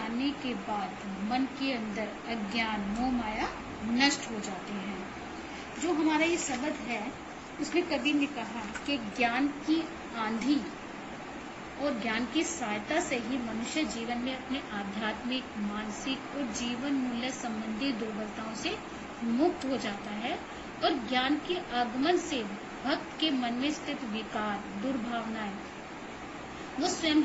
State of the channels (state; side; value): identical; both; correlation 1.00